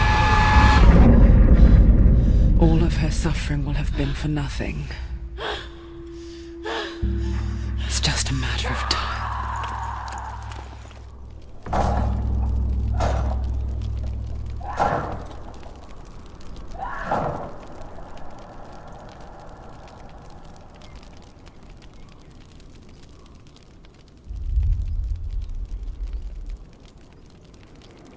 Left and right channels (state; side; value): identical; both; correlation 1.00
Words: All of her suffering will have been for nothing. It's just a matter of time.